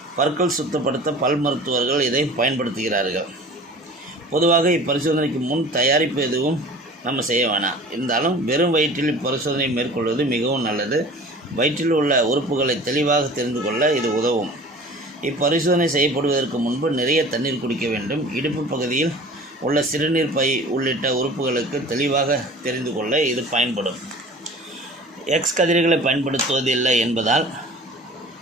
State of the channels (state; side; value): normal; both; correlation 0.43